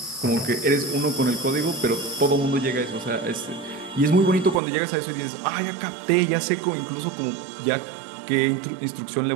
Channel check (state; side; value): drops out; left; at 4.6 s